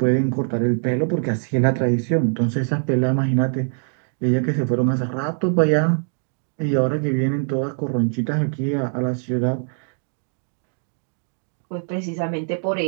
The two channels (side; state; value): left; silent; digital silence